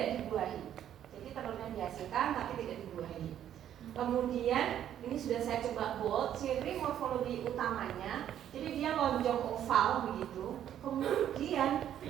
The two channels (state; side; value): quieter; left; 10.5 dB